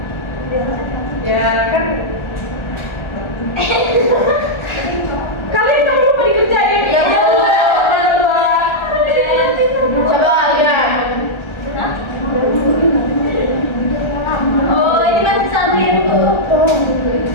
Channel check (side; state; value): right; late; 1.3 ms